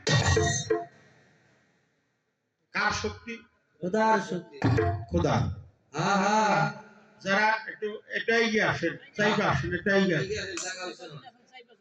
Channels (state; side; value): identical; both; correlation 1.00